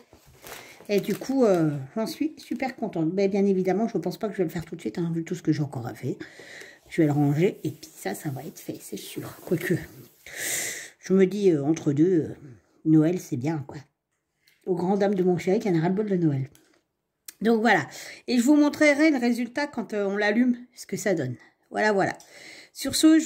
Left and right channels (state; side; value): identical; both; correlation 1.00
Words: Et du coup, j'en suis super contente. Mais bien évidemment, je ne pense pas que je vais le faire tout de suite, hein, vu tout ce que j'ai encore à faire. Je vais le ranger et puis ça va être fait, c'est sûr. Quoique, je me dis, entre deux, Noël, c'est bien, quoi. Aux grandes dames de mon chéri qui en a ras-le-bol de Noël. Donc voilà. Et je vous montrerai le résultat quand on l'allume, ce que ça donne. Voilà, voilà. Sur ce,